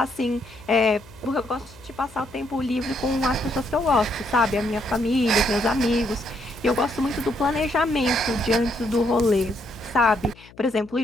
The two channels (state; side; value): noise; left; hum, 24 dB below the sound